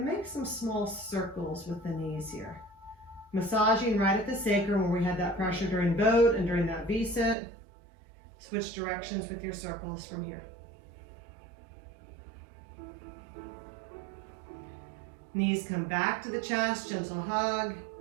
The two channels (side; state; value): left; drops out; at 7.4 s